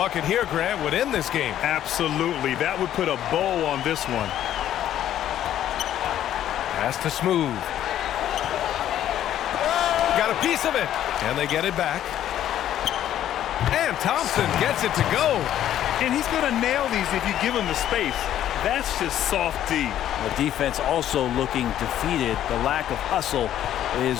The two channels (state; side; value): quieter; right; 11.5 dB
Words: here, Grant, would end this game. Absolutely. That would put a bow on this one. Pass to Smooth. Got a piece of it. And they get it back. And Thompson gets it to go. And he's going to nail these if you give him the space. That's just soft D. The defense also looking defeated. The lack of hustle is